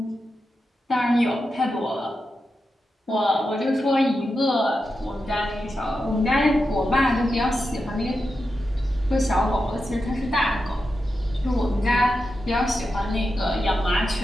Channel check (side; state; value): both; normal; correlation 0.89